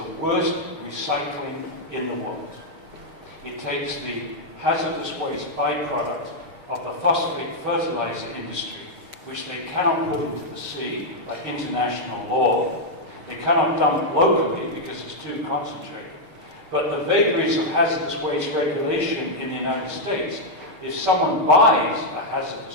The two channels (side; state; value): left; late; 6.6 ms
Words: worst recycling in the world. It takes the hazardous waste byproduct of the phosphate fertilizer industry, which they cannot put into the sea by international law. They cannot dump locally because it's too concentrated. But the vagaries of hazardous waste regulation in the United States, if someone buys a